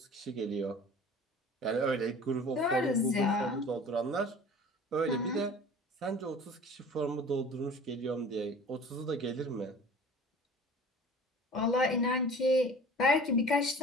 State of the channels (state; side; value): normal; both; correlation 0.43